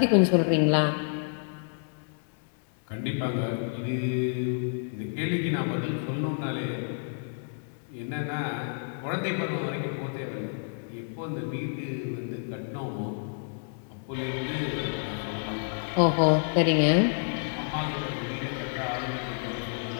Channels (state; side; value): silent; right; digital silence